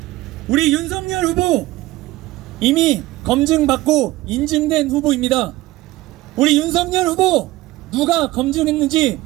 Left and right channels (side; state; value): left; quieter; 17.9 dB